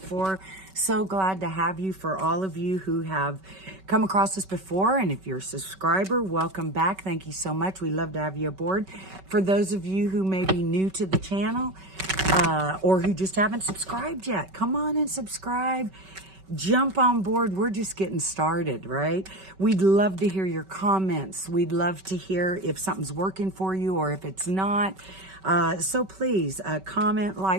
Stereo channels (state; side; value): late; left; 5.3 ms